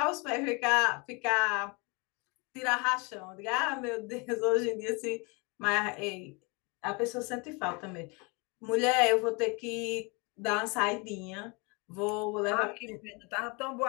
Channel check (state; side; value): quieter; right; 30.0 dB